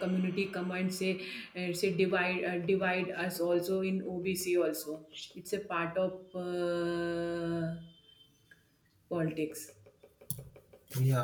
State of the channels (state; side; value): identical; both; correlation 1.00